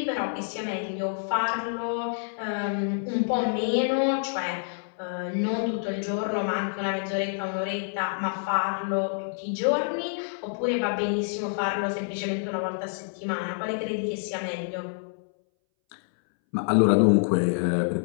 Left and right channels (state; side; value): silent; right; 60 dB below the other